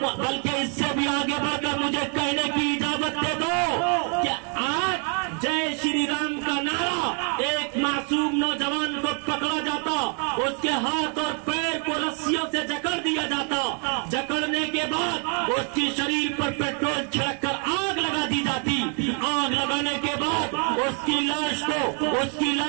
بلکہ اس سے بھی آگے بڑھ کر مجھے کہنے کی اجازت دے دو کہ آج جے شری رام کا نعرہ ایک معصوم نوجوان کو پکڑا جاتا, اس کے ہاتھ اور پیر کو رسیوں سے جکڑ دیا جاتا, جکڑنے کے بعد اس کی شریر پر پیٹرول چھڑک کر آگ لگا دی جاتی, آگ لگانے کے بعد اس کی لاش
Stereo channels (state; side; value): quieter; left; 39.0 dB